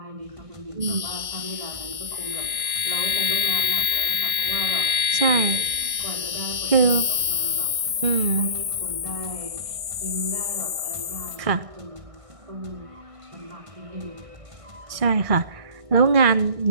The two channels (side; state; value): left; late; 1.6 ms